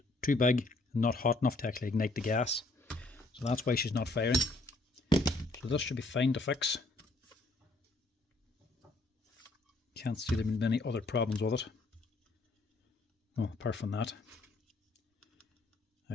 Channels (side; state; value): right; quieter; 3.0 dB